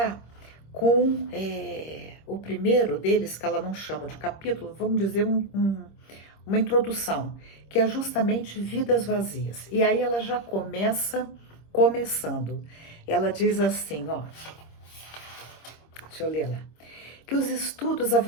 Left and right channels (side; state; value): right; late; 26 ms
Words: com o primeiro deles, que ela não chama de capítulo, vamos dizer uma introdução, que é justamente Vidas Vazias. E aí ela já começando. Ela diz assim, ó, deixa eu ler lá, que os estudos